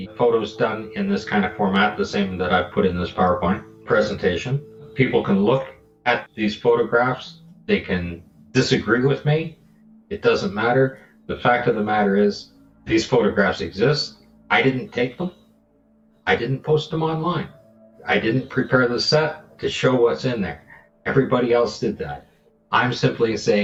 photos done in this kind of format, the same that I've put in this PowerPoint presentation. People can look at these photographs. They can disagree with me. It doesn't matter. The fact of the matter is, these photographs exist. I didn't take them. I didn't post them online. I didn't prepare the set to show what's in there. Everybody else did that. I'm simply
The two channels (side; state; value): both; identical; correlation 1.00